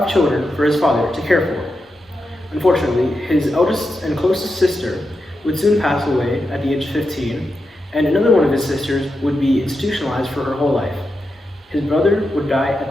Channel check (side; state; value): both; normal; correlation 0.88